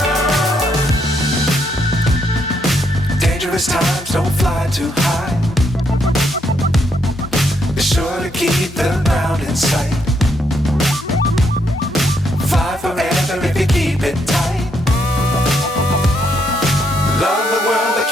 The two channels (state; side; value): normal; both; correlation 0.75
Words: Times don't fly too high. Be sure to keep the ground in sight. Fly forever if you keep it tight. Love the world but